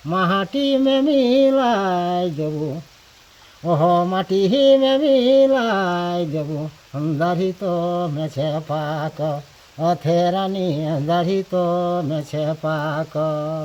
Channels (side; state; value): both; identical; correlation 1.00